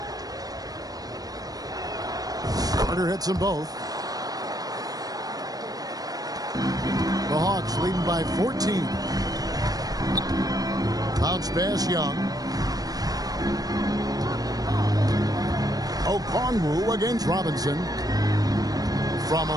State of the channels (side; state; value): left; late; 0.18 ms